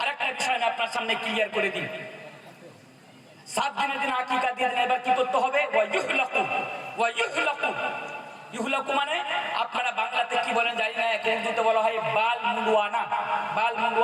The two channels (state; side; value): identical; both; correlation 1.00